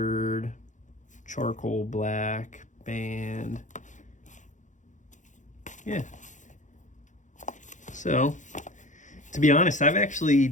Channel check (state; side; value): late; right; 0.36 ms